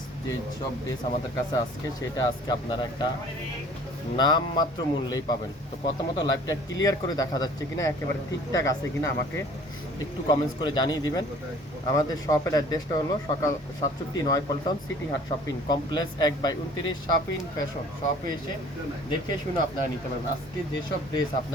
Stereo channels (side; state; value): both; normal; correlation 0.51